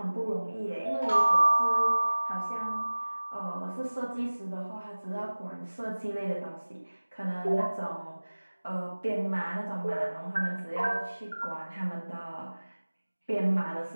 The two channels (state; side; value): inverted; both; correlation -1.00